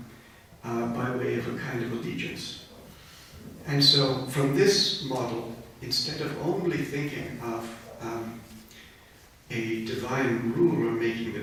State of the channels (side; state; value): both; identical; correlation 1.00